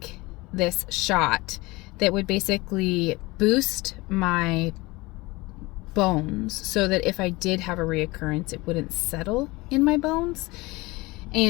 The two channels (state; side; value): quieter; right; 22.4 dB